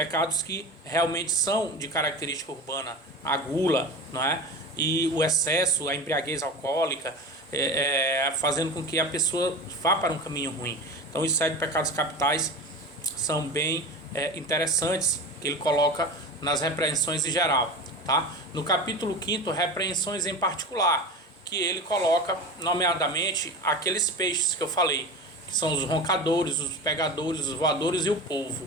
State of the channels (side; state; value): both; normal; correlation 0.30